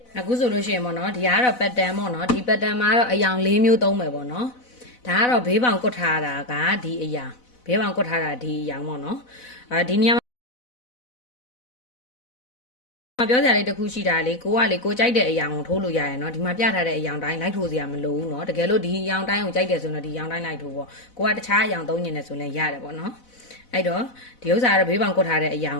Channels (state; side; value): late; right; 4.0 ms